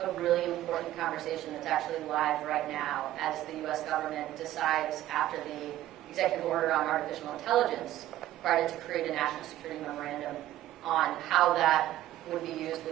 a really important conversation that's actually live right now as the U.S. government decides, after the executive order on artificial intelligence, decided to create a national security memorandum on how that would be used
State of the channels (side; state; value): left; quieter; 14.0 dB